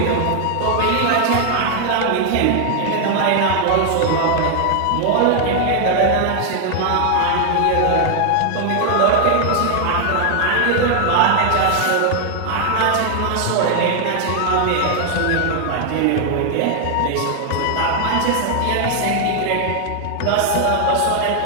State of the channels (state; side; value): different; both; correlation 0.00